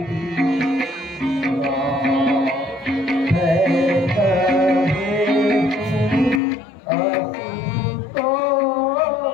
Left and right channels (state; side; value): drops out; right; at 6.4 s